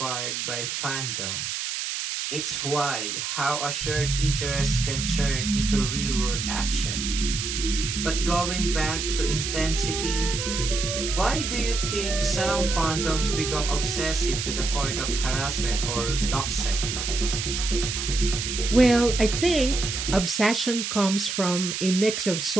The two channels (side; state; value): right; noise; hiss, 3 dB below the sound